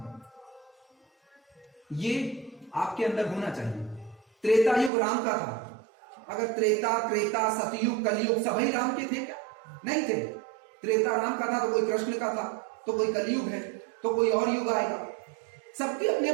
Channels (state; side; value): drops out; left; at 4.9 s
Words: दो। ये आपके अंदर होना चाहिए। त्रेता युग राम का था। अगर त्रेता सतयुग कलयुग सभी राम के थे क्या? नहीं थे। त्रेता राम का था तो कोई कृष्ण का था, तो कोई कलयुग है, तो कोई और युग आएगा। सबकी अपनी